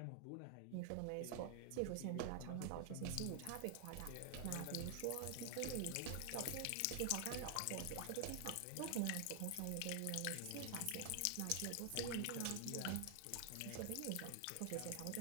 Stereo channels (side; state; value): both; different; correlation 0.00